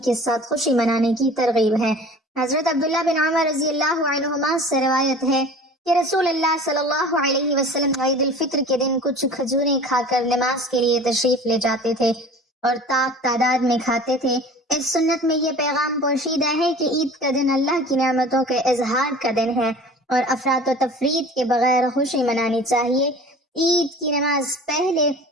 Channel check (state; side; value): normal; both; correlation 0.42